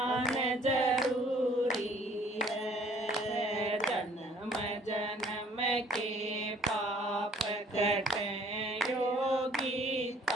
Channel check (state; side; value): normal; both; correlation 0.58